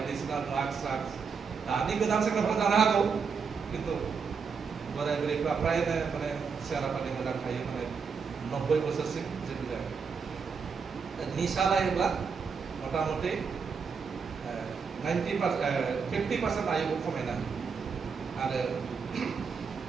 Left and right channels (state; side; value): quieter; left; 5.7 dB